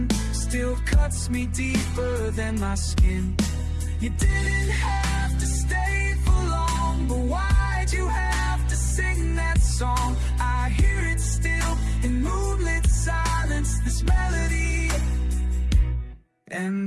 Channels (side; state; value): both; identical; correlation 1.00